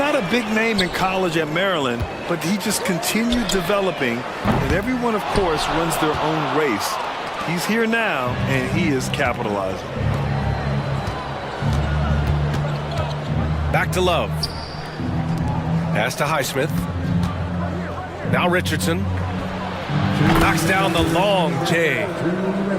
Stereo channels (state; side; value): identical; both; correlation 1.00